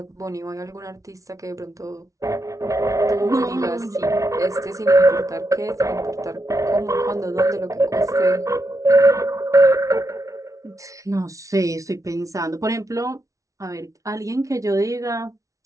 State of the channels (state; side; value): late; left; 0.16 ms